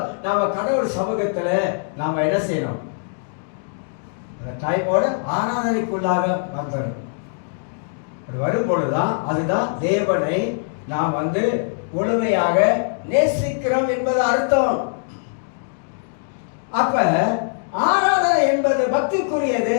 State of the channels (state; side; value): silent; right; digital silence